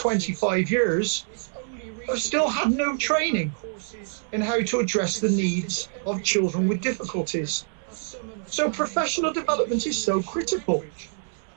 years, have still had no training in how to address the needs of children with difficulties. So professional development is so critical.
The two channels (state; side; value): silent; left; 61 dB below the other